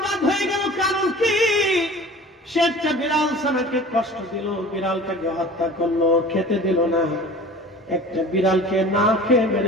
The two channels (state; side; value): normal; both; correlation 0.41